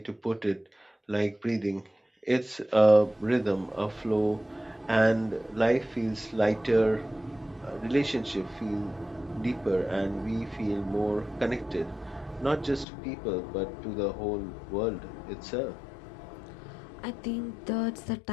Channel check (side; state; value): right; drops out; at 12.9 s